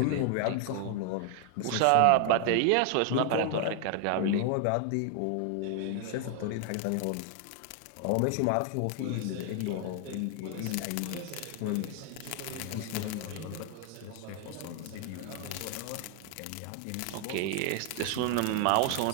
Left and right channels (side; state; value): both; different; correlation 0.00